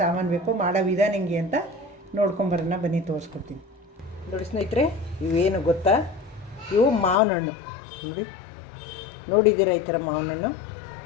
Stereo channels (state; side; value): drops out; right; at 7.2 s